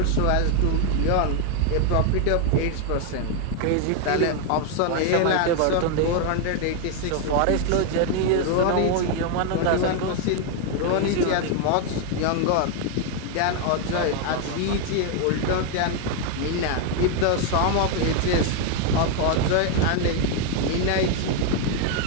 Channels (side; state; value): both; different; correlation 0.01